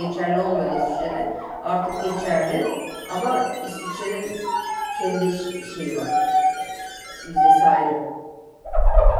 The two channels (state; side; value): identical; both; correlation 1.00